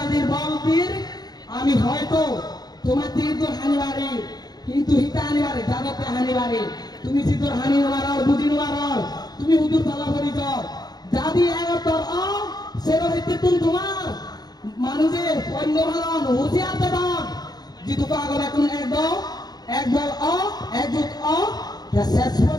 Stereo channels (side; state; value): right; late; 0.19 ms